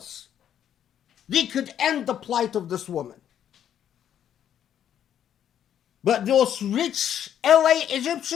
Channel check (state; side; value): quieter; right; 9.9 dB